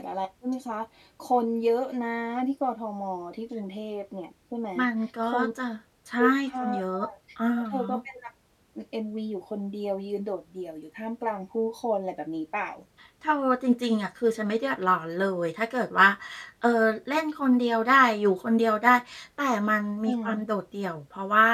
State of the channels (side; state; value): both; identical; correlation 1.00